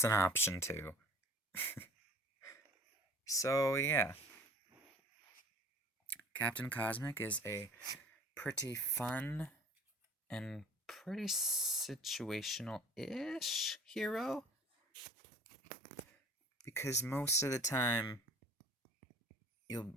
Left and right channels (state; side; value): normal; both; correlation 0.47